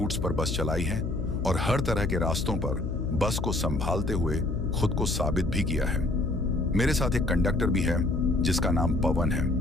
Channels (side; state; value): left; noise; hum, 3 dB below the sound